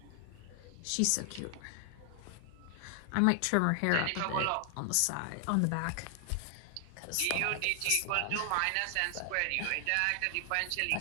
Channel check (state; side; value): different; both; correlation 0.00